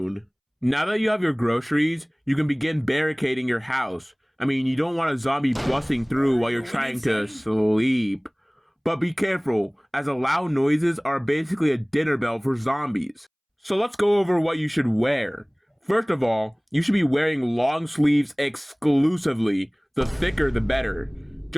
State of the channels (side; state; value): both; identical; correlation 1.00